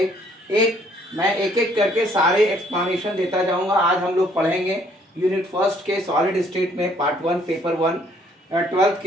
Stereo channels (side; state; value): both; normal; correlation 0.64